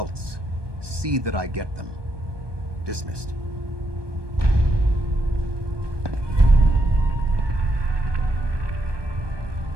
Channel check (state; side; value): late; left; 1.2 ms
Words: See that I get them. Dismissed.